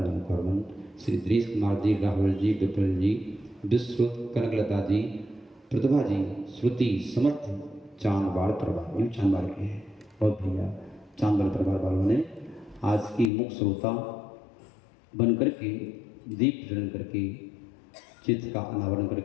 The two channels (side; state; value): right; drops out; at 13.3 s